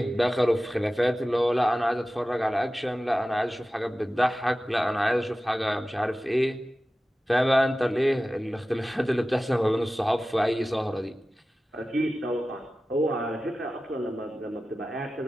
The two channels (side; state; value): both; normal; correlation 0.95